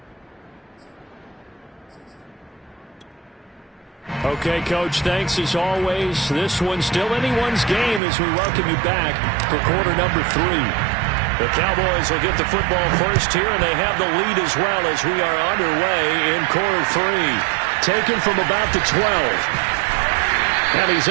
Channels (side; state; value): left; drops out; at 8.0 s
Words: Okay, Coach, thanks as always. This one's still anyone's game as we welcome you back for quarter number 3. The Cowboys will get the football first here, and they have the lead as well as we are underway in quarter 3. Taken from about the 12. And he's